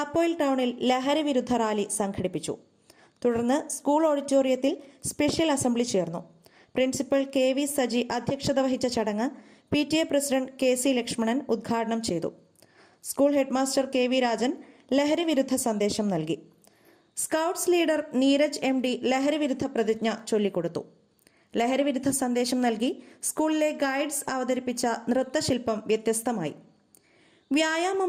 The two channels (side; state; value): both; identical; correlation 1.00